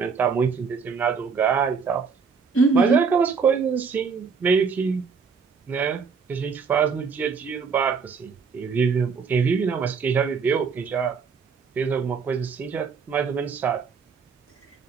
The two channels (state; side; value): quieter; left; 5.6 dB